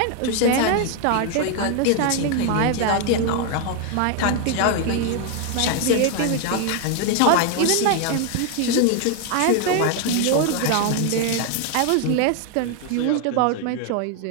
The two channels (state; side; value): different; both; correlation 0.00